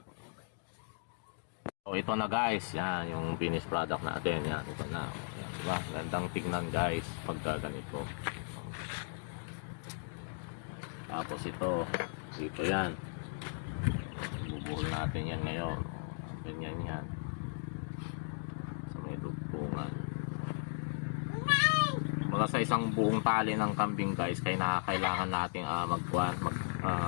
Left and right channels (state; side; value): silent; right; digital silence